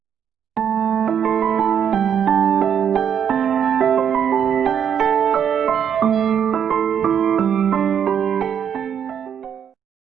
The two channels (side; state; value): left; quieter; 8.3 dB